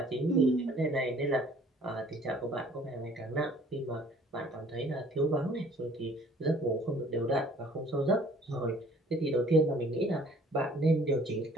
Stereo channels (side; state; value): both; normal; correlation 0.56